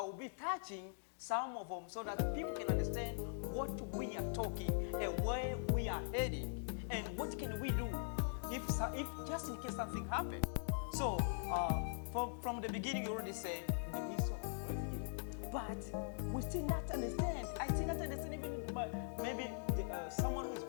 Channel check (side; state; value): right; silent; digital silence